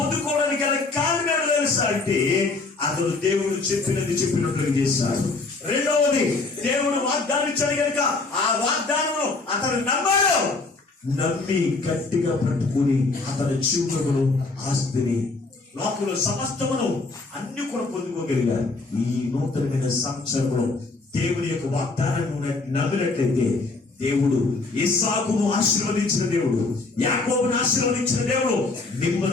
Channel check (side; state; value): right; quieter; 3.6 dB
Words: గల కారణం తెలుసా అంటే అతడు దేవుడు చెప్పినట్లుగా చేశాడు. రెండవది దేవుడు వాగ్దానం ఇచ్చాడు కనుక ఆ వాగ్దానంలో అతను నమ్మాడు. నమ్మి గట్టిగా పట్టుకుని అతని జీవితంలో ఆస్తిని లోకంలో సమస్తమును అన్ని కూడా పొందుకోగలిగారు. ఈ నూతనమైన సంవత్సరంలో దేవుని యొక్క వాగ్దానాన్ని నమ్మినట్లయితే దేవుడు ఇస్సాకును ఆశీర్వదించిన దేవుడు, యాకోబును ఆశీర్వదించిన దేవుడు